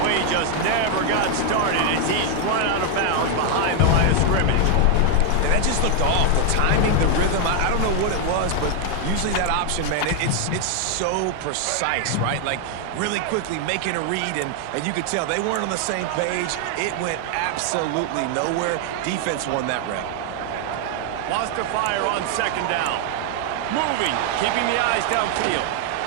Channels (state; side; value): different; both; correlation 0.00